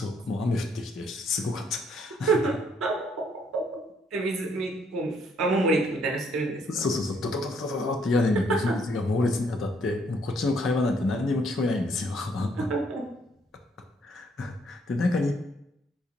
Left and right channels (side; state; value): both; normal; correlation 0.68